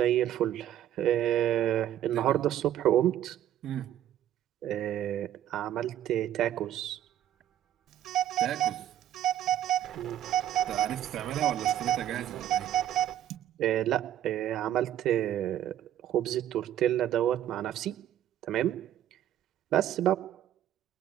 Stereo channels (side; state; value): left; quieter; 11.7 dB